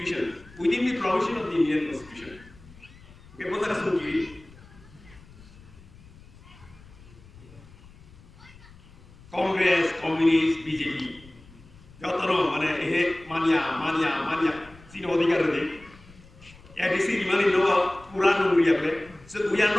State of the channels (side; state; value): left; noise; rumble, 22 dB below the sound